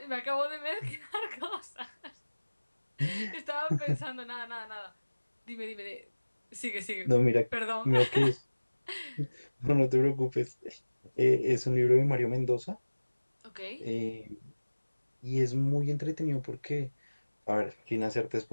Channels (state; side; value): inverted; both; correlation -1.00